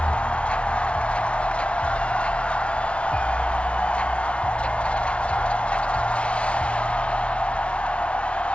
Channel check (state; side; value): late; right; 0.060 ms